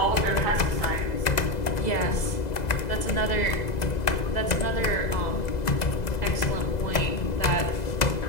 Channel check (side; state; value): right; late; 2.0 ms